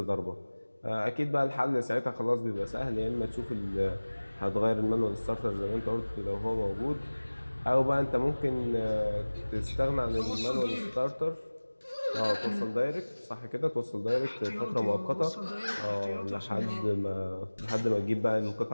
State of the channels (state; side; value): inverted; both; correlation -1.00